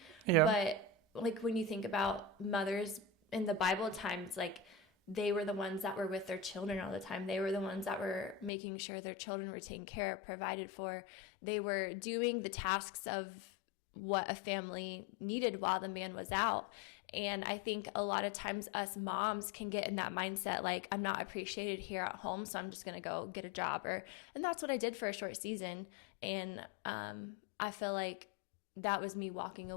Yeah. But like when you think about mothers in the Bible times, like they were the ones that were with their children all the time. They were the ones that were making sure their children were taken care of, provided for. They were doing the tasks of what a family needed while the man was out. And I think a lot of times us moms can get in that mindset, like, I'm not appreciated here at home, so I'm just going to go get a job. And that's what I did for a short season. And I feel like that was me walking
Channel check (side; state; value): right; drops out; at 8.5 s